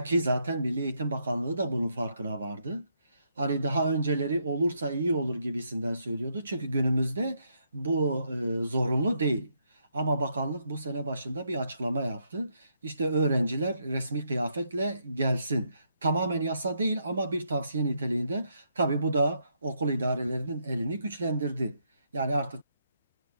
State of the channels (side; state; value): both; inverted; correlation -0.76